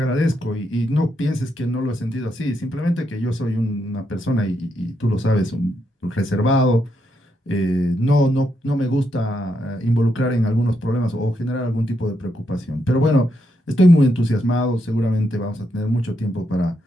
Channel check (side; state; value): both; normal; correlation 0.80